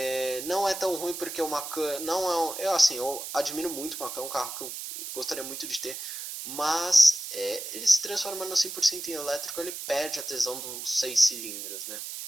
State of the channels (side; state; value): right; noise; hiss, 7 dB below the sound